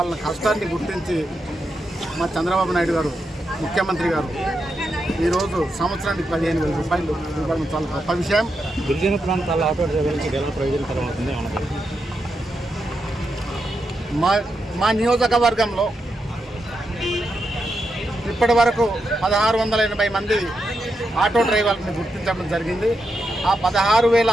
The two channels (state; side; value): normal; both; correlation 0.85